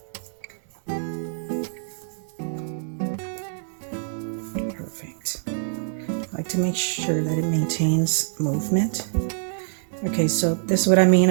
Perfect. I like to make sure that it maintains movement. Okay, so this is what I mean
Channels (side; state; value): left; silent; digital silence